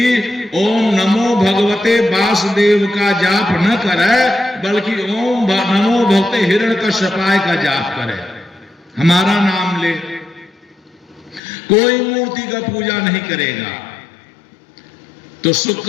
ओम नमो भगवते वासुदेव का जाप न करे, बल्कि ओम नमो भगवते हिरण्यकश्यपाय का जाप करे, हमारा नाम ले। कोई मूर्ति का पूजा नहीं करेगा। तो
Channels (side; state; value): right; drops out; at 11.4 s